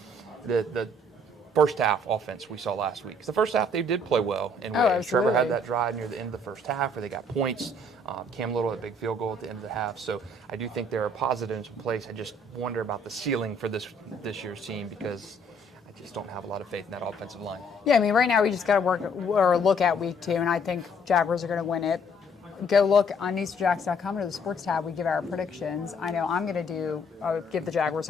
the first half offense we saw last week. 'Cause the first half they did play well. And Trevor had that drive near the end of the first half where they got points. Cam Little had a big field goal at the end of the half. So I do think there are positives in place. I just wonder about the ceiling for this year's team because I just don't have a lot of faith in that offensive line. Yeah, I mean, right now we just got to look at week 2, and I think Jaguars are going to win it. Go look on News4JAGs.com under the sports tab. We give our predictions. I know I'm going to give the Jaguars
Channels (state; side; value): normal; both; correlation 0.63